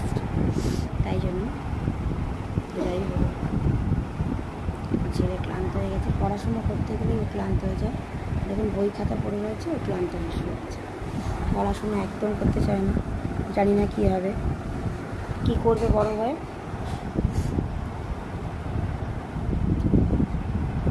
তাই জন্য। যাই হোক, ছেলে ক্লান্ত হয়ে গেছে। পড়াশুনো করতে গেলেই ও ক্লান্ত হয়ে যায়। দেখুন বই খাতা পড়ে রয়েছে, ও ক্লান্ত হয়ে শুয়ে যাচ্ছে। পড়াশুনো একদম করতে চায় না। জানি না কী হবে, কী করবে বড় হয়ে।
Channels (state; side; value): identical; both; correlation 1.00